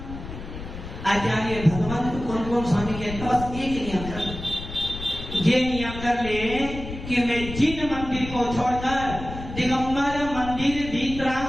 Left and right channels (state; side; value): noise; left; rumble, 10 dB below the sound